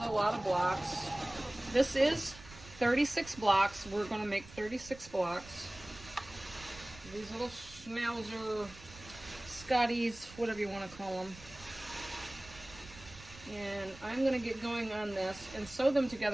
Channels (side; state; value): right; noise; rumble, 18 dB below the sound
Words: a lot of blocks. This is 36 blocks. We're going to make 36 blocks. These little schnauzer, Scotties, whatever you want to call them. And I'm going to get going on this and sew them